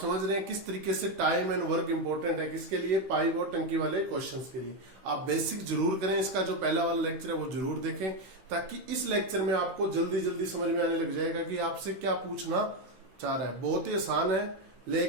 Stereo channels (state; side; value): late; left; 16 ms